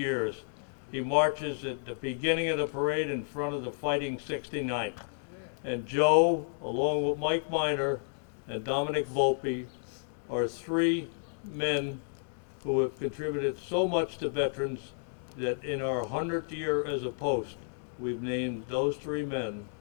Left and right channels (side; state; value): right; silent; digital silence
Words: He marches at the beginning of the parade in front of the Fighting 69th. And Joe, along with Mike Miner and Dominic Volpe, are three men who have contributed so much to veterans that in our 100th year as a post, we've named those three men